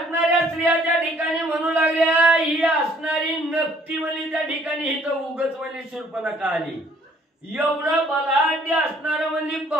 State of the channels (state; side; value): normal; both; correlation 0.60